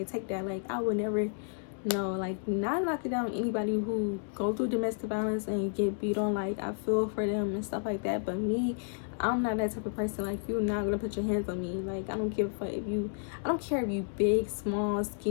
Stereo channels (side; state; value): right; silent; digital silence